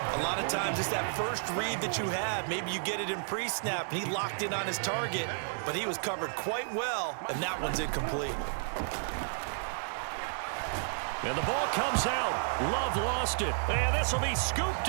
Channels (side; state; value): left; silent; digital silence